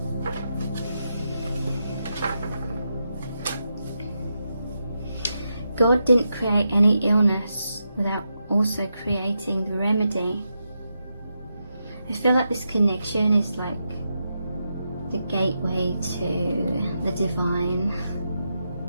God didn't create any illness without also creating the remedy. I feel like this connection is like the gateway to the divine.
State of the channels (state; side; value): inverted; both; correlation -0.86